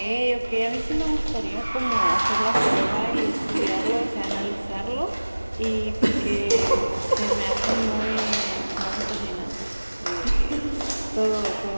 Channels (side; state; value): both; inverted; correlation -1.00